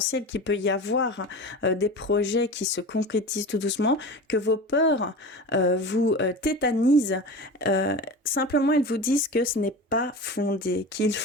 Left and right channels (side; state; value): both; normal; correlation 0.31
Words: qu'il peut y avoir, des projets qui se concrétisent tout doucement, que vos peurs vous tétanisent, simplement elles vous disent que ce n'est pas fondé, qu'il